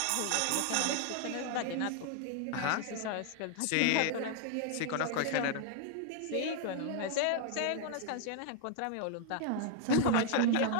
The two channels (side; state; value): both; different; correlation 0.00